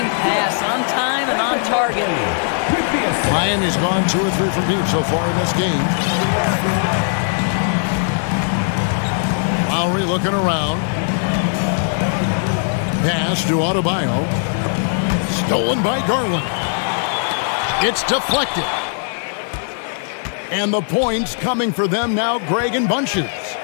pass, on time and on target. Miami's gone 2 or 3 from deep so far in this game. Lowry looking around. Pass to Adebayo. Stolen by Garland. It's deflected. And the points coming for them now, Greg, in bunches.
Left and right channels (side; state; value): right; silent; digital silence